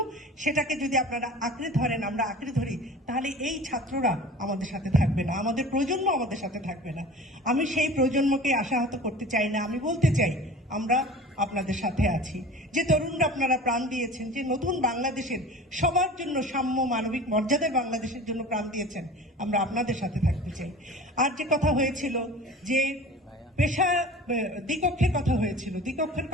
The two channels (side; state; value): both; normal; correlation 0.40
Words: সেটাকে যদি আপনারা আঁকড়ে ধরেন, আমরা আঁকড়ে ধরি, তাহলে এই ছাত্ররা আমাদের সাথে থাকবে না, আমাদের প্রজন্ম আমাদের সাথে থাকবে না। আমি সেই প্রজন্মকে আশাহত করতে চাই না। আমি বলতে চাই, আমরা আপনাদের সাথে আছি। যে তরুণরা আপনারা প্রাণ দিয়েছেন, যে নতুন বাংলাদেশের সবার জন্য সাম্য মানবিক মর্যাদার বাংলাদেশের জন্য প্রাণ দিয়েছেন, আমরা আপনাদের সাথে থাকতে চাই। আর যে কথা হয়েছিল যে পেশা দ্বিকক্ষের কথা হয়েছিল, দ্বিকক্ষের